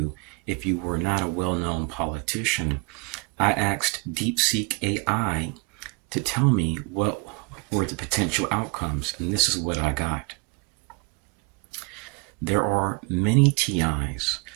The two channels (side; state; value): left; quieter; 31.0 dB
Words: if you were not a well-known politician. I asked DeepSeek AI to tell me what were the potential outcomes, and this is what I got. There are many TIs